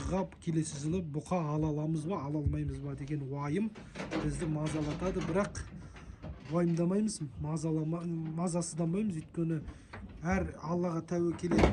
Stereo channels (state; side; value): identical; both; correlation 1.00